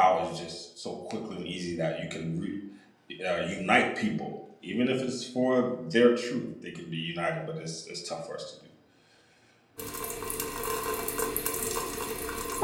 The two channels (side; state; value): both; identical; correlation 1.00